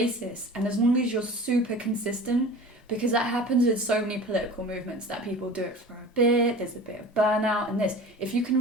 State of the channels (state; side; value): normal; both; correlation 0.38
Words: And as long as you're super consistent, because that happens with so many political movements, that people do it for a bit, there's a bit of burnout and this. If you